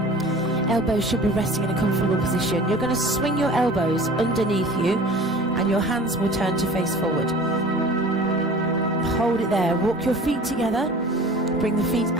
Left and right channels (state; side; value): normal; both; correlation 0.43